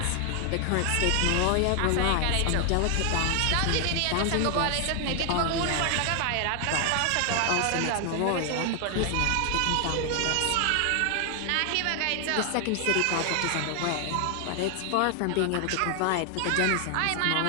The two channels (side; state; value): both; different; correlation 0.00